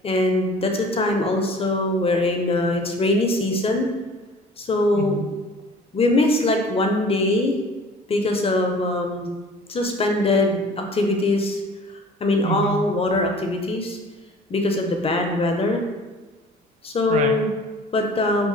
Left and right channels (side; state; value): both; normal; correlation 0.47